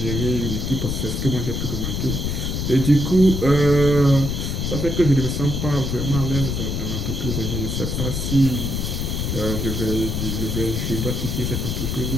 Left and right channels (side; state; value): left; noise; rumble, 1 dB below the sound